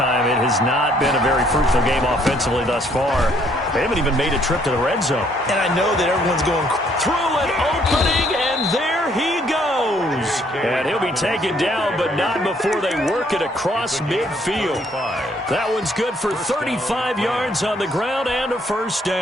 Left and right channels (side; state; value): both; normal; correlation 0.66